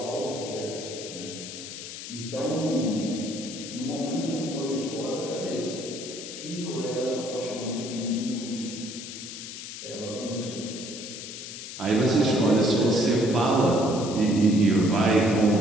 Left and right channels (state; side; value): noise; left; hiss, 10 dB below the sound